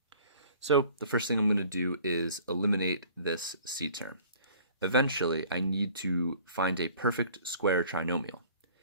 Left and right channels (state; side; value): inverted; both; correlation -0.51